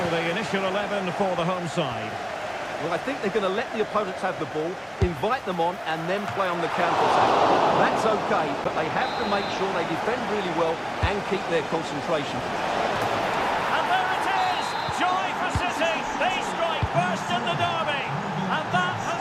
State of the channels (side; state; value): both; identical; correlation 1.00